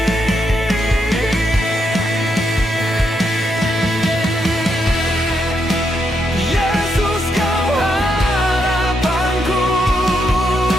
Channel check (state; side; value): normal; both; correlation 0.80